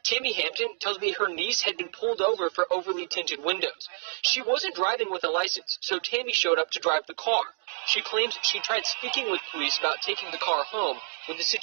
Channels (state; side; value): silent; left; digital silence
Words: Tammy Hampton tells me her niece had been pulled over for overly tinted windows. She wasn't driving with a license, so Tammy showed up to drive the car. She claims she tried speaking with police about taking the car home when the